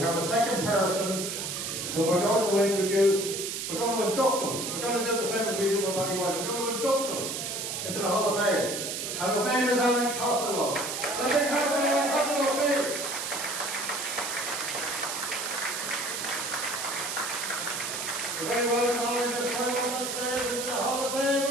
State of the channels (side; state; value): right; noise; hiss, 4 dB below the sound